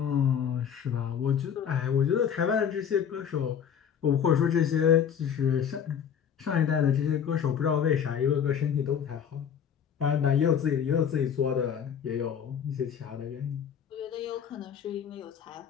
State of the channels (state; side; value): quieter; right; 8.1 dB